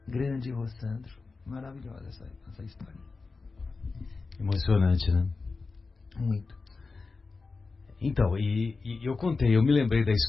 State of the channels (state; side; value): quieter; right; 4.1 dB